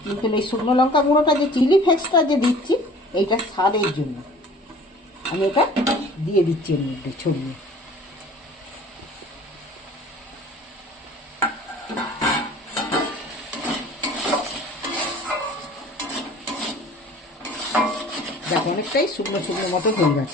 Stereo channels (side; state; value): both; normal; correlation 0.47